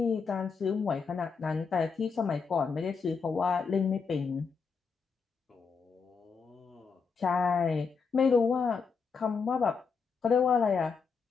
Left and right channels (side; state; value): right; quieter; 5.4 dB